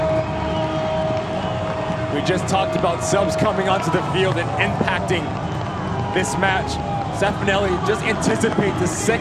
We just talked about subs coming onto the field and impacting this match. Stefanelli just anticipates the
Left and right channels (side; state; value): both; identical; correlation 1.00